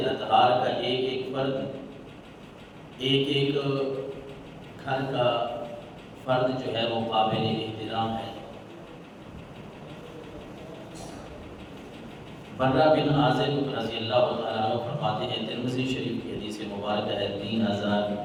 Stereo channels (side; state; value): both; identical; correlation 1.00